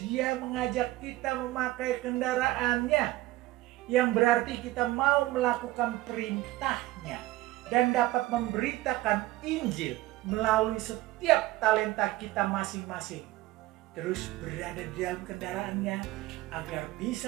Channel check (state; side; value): quieter; left; 17.6 dB